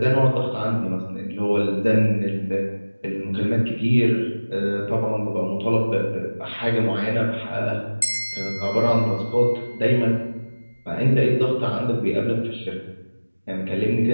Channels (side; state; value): both; inverted; correlation -1.00